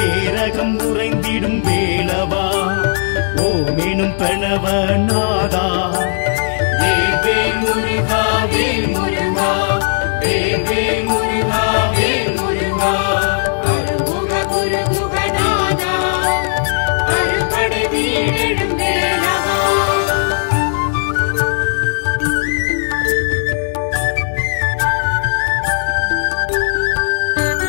ஏரகம் உறைந்திடும் வேலவா ஓமெனும் பிரணவ நாதா வேல் வேல் முருகா வேல் முருகா வேல் வேல் முருகா வேல் முருகா அருமுக குரு குகநாதா அருப்படை வீடெழும் வேலவா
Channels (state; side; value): silent; right; digital silence